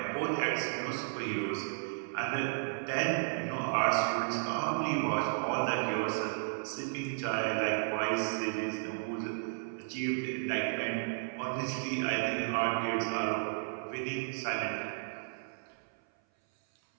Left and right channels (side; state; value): left; silent; 55 dB below the other